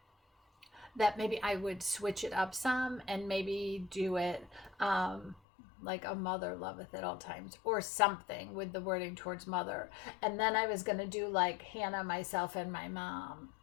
maybe I would switch it up some and maybe do it like A Mother Loveth at All Times or something with the wording towards mother. And then I was going to do like Hannah, myself, and my mom,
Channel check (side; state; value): right; drops out; at 5.4 s